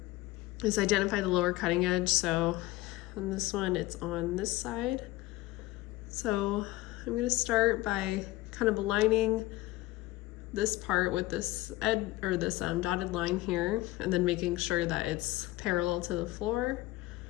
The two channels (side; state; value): right; quieter; 18.0 dB